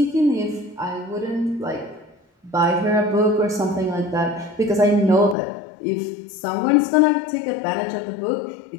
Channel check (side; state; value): right; drops out; at 5.4 s